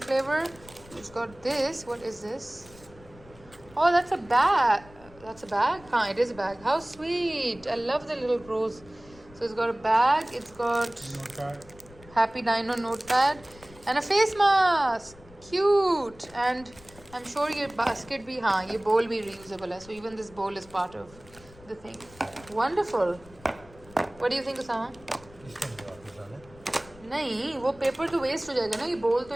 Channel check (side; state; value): left; noise; rumble, 23 dB below the sound